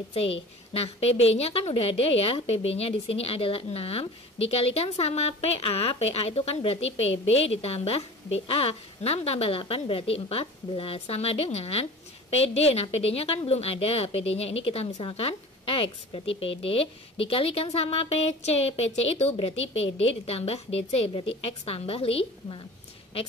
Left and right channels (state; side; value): normal; both; correlation 0.40